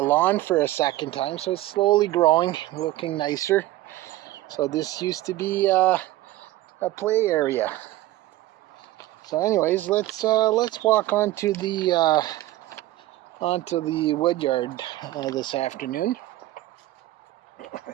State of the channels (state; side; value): quieter; left; 16.1 dB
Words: for a second time, so it's slowly growing, looking nicer. So this used to be a play area. So anyways, let's walk onto the Woodyard this afternoon